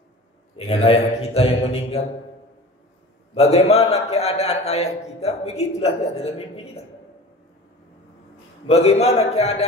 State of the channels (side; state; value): both; normal; correlation 0.38